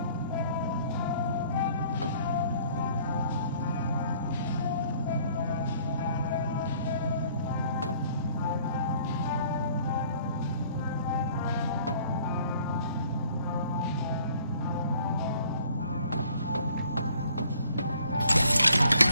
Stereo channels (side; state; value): both; inverted; correlation -0.57